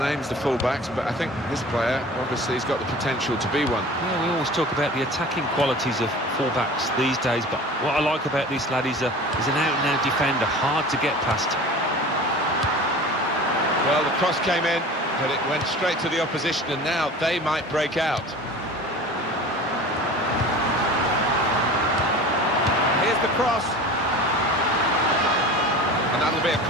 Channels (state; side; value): normal; both; correlation 0.38